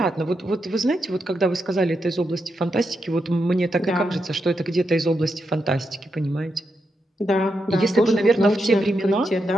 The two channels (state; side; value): normal; both; correlation 0.84